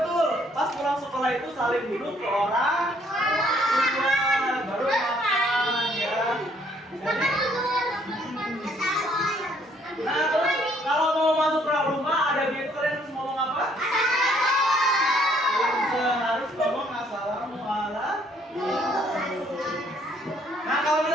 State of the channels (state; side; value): normal; both; correlation 0.65